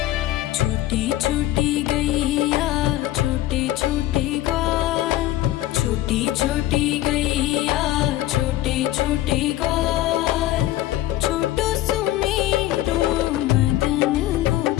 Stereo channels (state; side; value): quieter; right; 14.8 dB